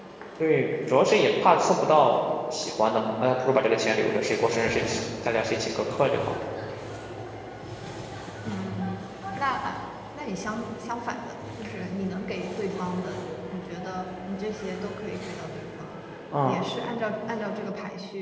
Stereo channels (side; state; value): both; identical; correlation 1.00